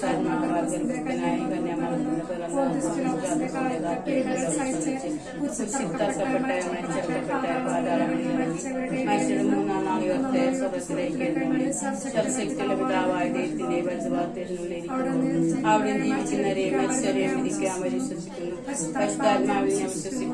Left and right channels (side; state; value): both; identical; correlation 1.00